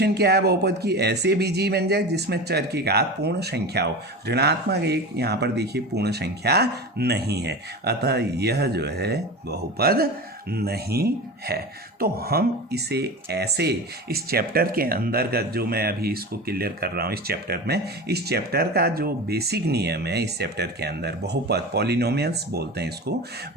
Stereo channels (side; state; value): both; normal; correlation 0.29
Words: क्या है बहुपद की, ऐसे बीजीय व्यंजक जिसमें चर की घात पूर्ण संख्या हो। ऋणात्मक 1 यहाँ पर देखिए पूर्ण संख्या नहीं है, अतः यह जो है बहुपद नहीं है। तो हम इसे ऐसे इस चैप्टर के अंदर का जो मैं अभी इसको क्लियर कर रहा हूँ इस चैप्टर में, इस चैप्टर का जो बेसिक नियम है इस चैप्टर के अंदर, बहुपद, पॉलिनोमियल्स बोलते हैं इसको,